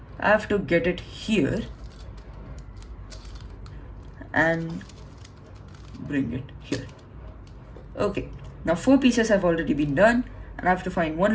I have to get it here and bring it here. Okay, now 4 pieces have already been done, and I have to find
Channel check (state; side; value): identical; both; correlation 1.00